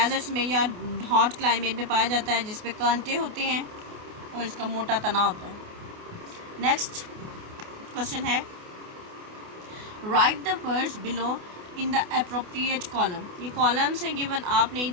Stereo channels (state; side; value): late; left; 28 ms